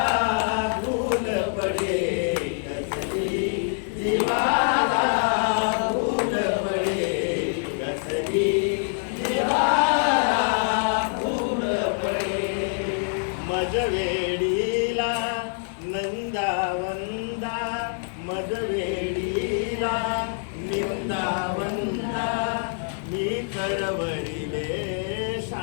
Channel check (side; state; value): right; silent; digital silence